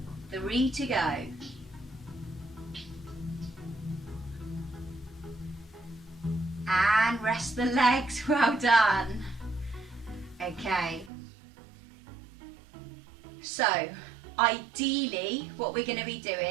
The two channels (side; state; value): left; drops out; at 11.1 s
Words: 3 to go. And rest the legs, well done. Okay. So, ideally, what we're going to be